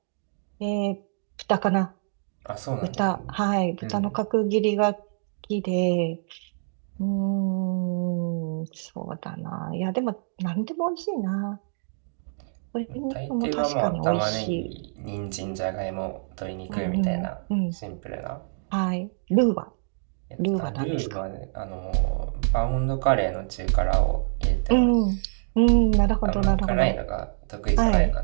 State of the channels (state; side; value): silent; left; digital silence